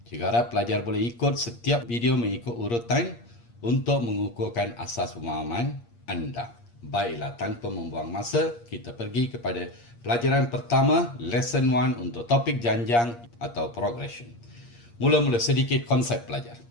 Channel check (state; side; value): late; right; 8.5 ms